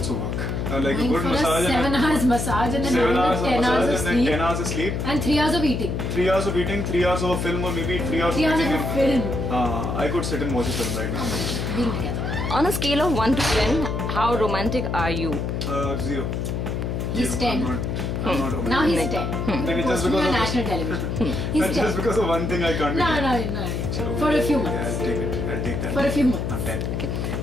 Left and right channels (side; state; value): left; noise; hum, 2 dB below the sound